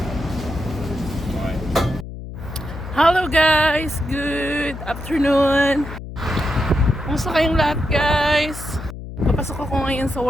Hello guys! Good afternoon! Kumusta kayong lahat guys? Papasok ako ngayon sa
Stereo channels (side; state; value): left; noise; hum, 10 dB below the sound